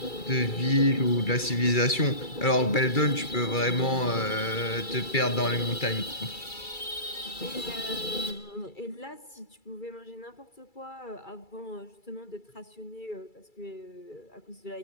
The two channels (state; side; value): late; right; 2.3 ms